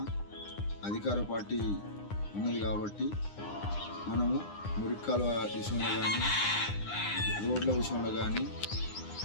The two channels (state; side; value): late; right; 9.8 ms